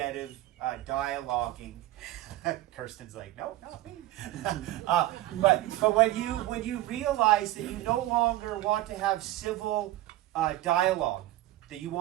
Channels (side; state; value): left; quieter; 15.6 dB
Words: of dialoguing. Kirsten's like, no, not me. But when you realize that you no longer want to have civil dialogue, that you